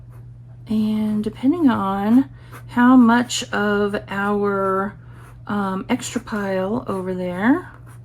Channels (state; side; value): identical; both; correlation 1.00